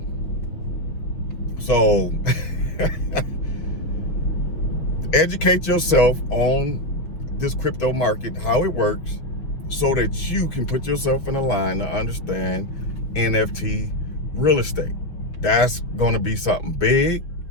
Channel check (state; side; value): late; right; 6.3 ms